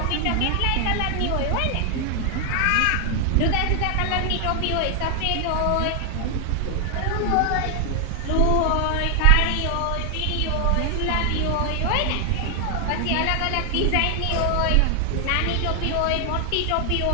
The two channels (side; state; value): both; different; correlation 0.00